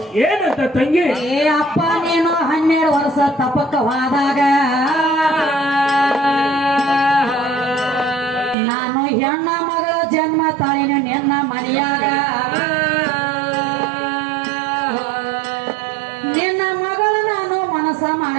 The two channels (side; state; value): left; drops out; at 8.6 s